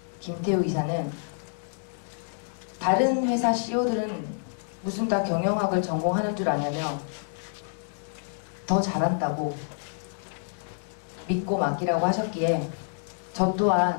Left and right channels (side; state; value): right; silent; digital silence